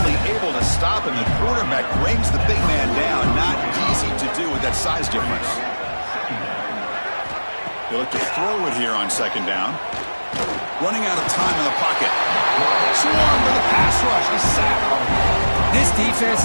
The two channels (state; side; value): inverted; both; correlation -1.00